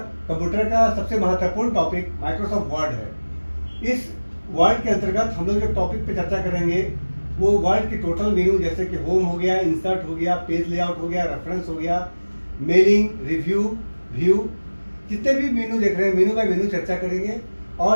कंप्यूटर का सबसे महत्वपूर्ण टॉपिक माइक्रोसॉफ्ट वर्ड है। इस वर्ड के अंतर्गत हम लोग जो टॉपिक पे चर्चा करेंगे वो वर्ड के टोटल मेनू, जैसे कि होम हो गया, इंसर्ट हो गया, पेज लेआउट हो गया, रेफरेंस हो गया, मेलिंग, रिव्यू, व्यू, जितने भी मेनू देख रहे हैं मेनू बाय मेनू चर्चा करेंगे।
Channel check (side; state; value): both; inverted; correlation -1.00